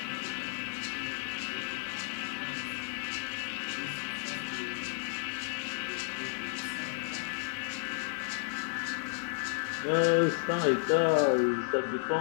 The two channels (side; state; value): right; silent; digital silence